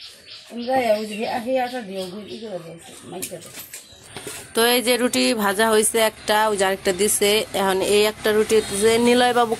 ওই যে আটা দিও গুড়ি করে দিয়েছে মাইকা তো এই যে রুটি ভাজা হয়েছে একটা ওই যে আরেকটা দিছে এখন এই একটা রুটি হইতেছে নিলয় বাবু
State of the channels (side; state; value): both; identical; correlation 1.00